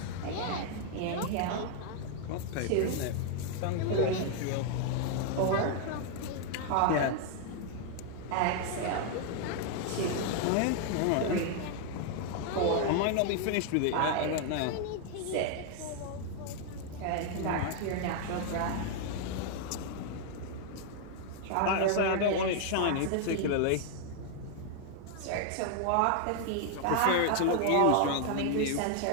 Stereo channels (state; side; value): different; both; correlation 0.00